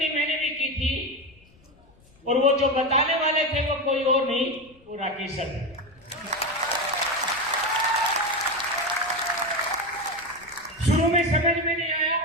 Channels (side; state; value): left; noise; rumble, 29 dB below the sound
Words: मैंने भी की थी, और वो जो बताने वाले थे वो कोई और नहीं, वो राकेश सर थे। शुरू में समझ में नहीं आया,